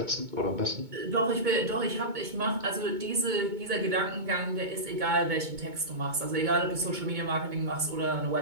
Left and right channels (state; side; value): late; left; 2.2 ms